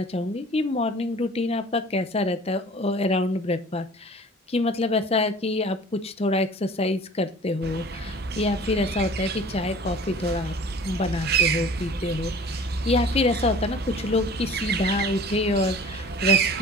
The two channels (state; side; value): normal; both; correlation 0.46